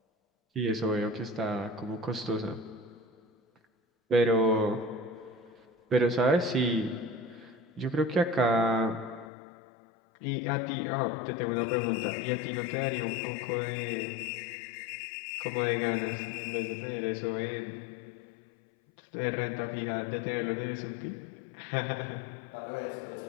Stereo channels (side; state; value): right; drops out; at 9.3 s